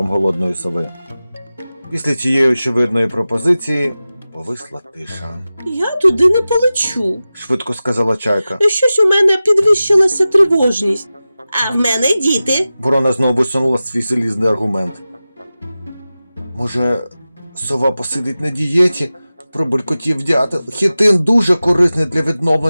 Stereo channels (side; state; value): both; inverted; correlation -0.95